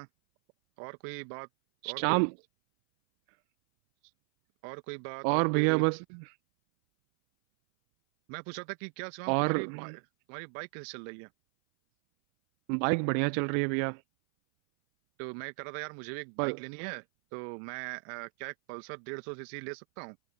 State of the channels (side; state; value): left; silent; 55 dB below the other